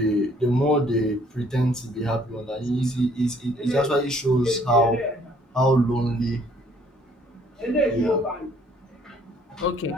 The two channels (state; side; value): normal; both; correlation 0.61